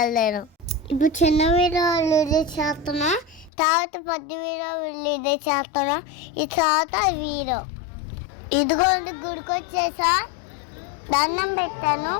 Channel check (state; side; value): drops out; right; at 3.5 s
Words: ఇప్పుడు చిన్న వీడియో రిలీజ్ చేస్తున్నాం, తర్వాత పెద్ద వీడియో రిలీజ్ చేస్తున్నాం. ఈ తర్వాత వీడియో ఇదిగోండి గుడికి వచ్చేసా, దండం పెట్టాను.